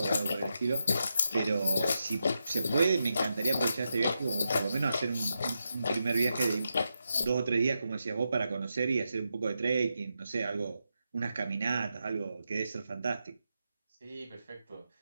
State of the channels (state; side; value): inverted; both; correlation -0.86